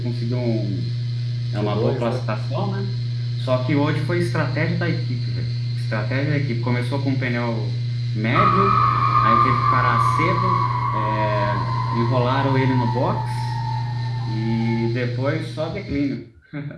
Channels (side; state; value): both; identical; correlation 1.00